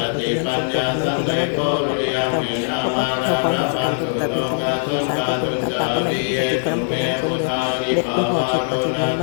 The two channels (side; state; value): right; silent; digital silence